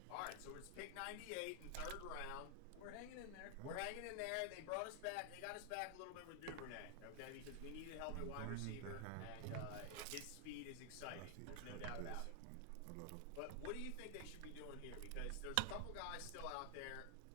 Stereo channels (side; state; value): both; different; correlation 0.00